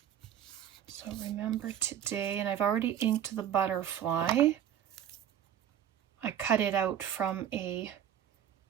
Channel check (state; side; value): quieter; left; 10.2 dB